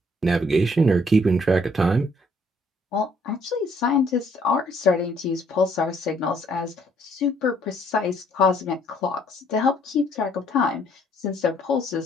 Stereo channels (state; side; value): normal; both; correlation 0.65